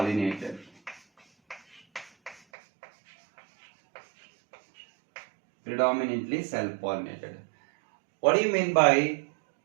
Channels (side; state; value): left; drops out; at 2.4 s